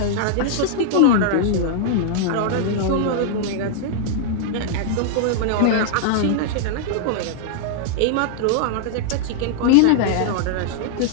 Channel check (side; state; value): both; different; correlation -0.01